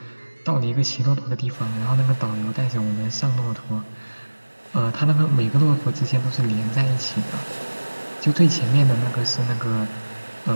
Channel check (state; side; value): inverted; both; correlation -1.00